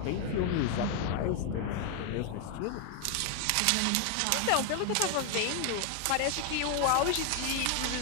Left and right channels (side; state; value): both; different; correlation 0.00